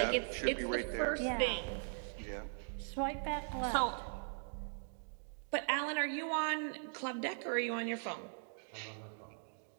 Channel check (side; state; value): left; silent; digital silence